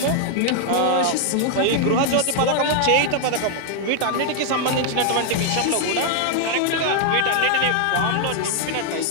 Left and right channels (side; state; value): both; different; correlation 0.00